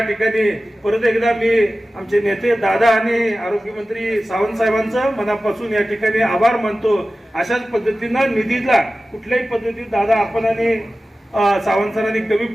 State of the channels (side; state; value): both; normal; correlation 0.95